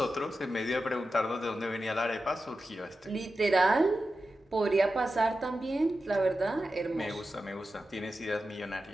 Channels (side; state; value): both; normal; correlation 0.92